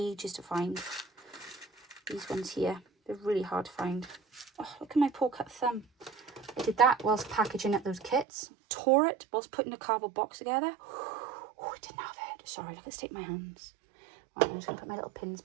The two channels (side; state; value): left; drops out; at 8.2 s